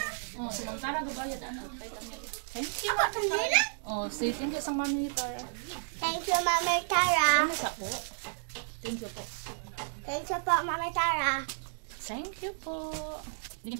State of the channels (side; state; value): left; silent; digital silence